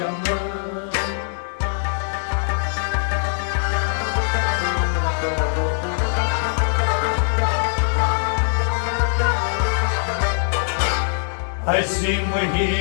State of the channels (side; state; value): right; silent; 58 dB below the other